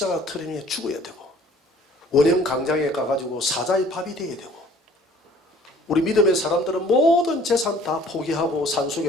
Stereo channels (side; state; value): both; normal; correlation 0.54